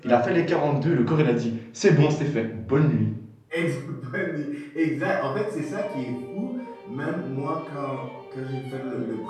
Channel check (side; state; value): both; identical; correlation 1.00